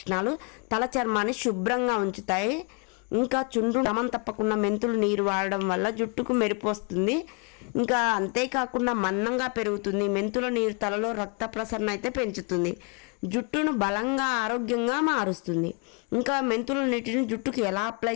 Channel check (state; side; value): quieter; right; 34.0 dB